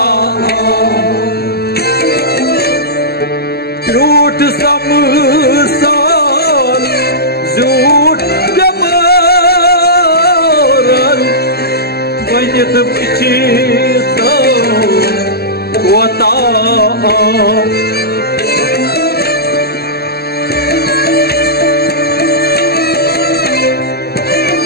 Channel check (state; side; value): late; right; 0.46 ms